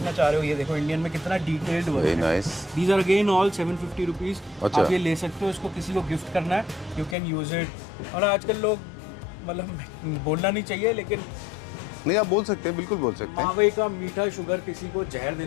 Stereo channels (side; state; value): right; drops out; at 7.2 s